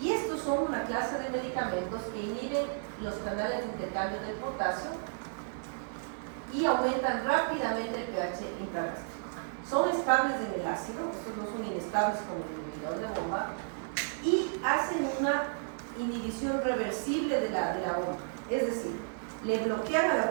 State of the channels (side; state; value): left; silent; digital silence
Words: Y estos son una clase de medicamentos que inhiben los canales de intercambio del potasio y aumentan rápidamente el pH intragástrico. Son estables en el ácido, estos no son inestables como el inhibidor de bomba, y hacen una inhibición reversible de la bomba. Es decir, le bloquean a la